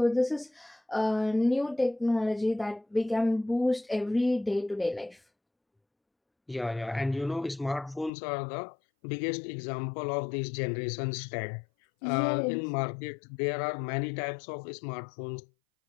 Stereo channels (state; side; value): drops out; right; at 8.1 s